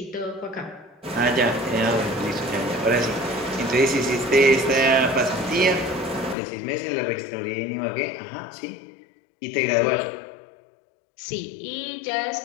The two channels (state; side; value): drops out; right; at 6.4 s